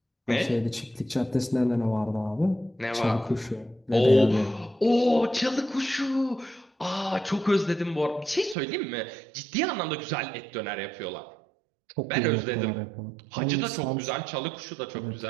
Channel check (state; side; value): drops out; left; at 8.6 s